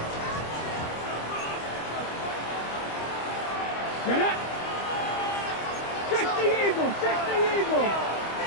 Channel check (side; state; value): right; late; 25 ms